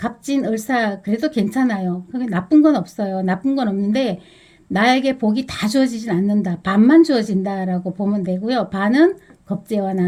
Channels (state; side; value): identical; both; correlation 1.00